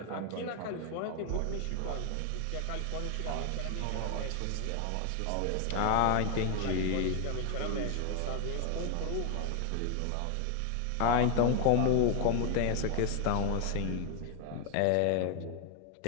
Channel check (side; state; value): both; different; correlation 0.01